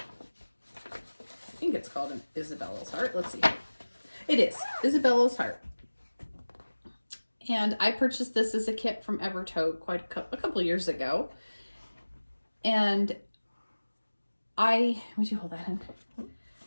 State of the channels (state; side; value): inverted; both; correlation -1.00